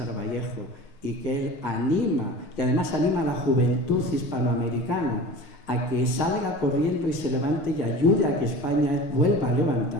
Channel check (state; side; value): late; right; 6.8 ms